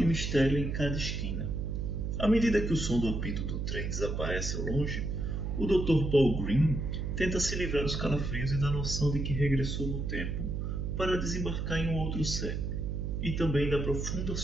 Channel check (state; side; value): noise; right; hum, 2 dB below the sound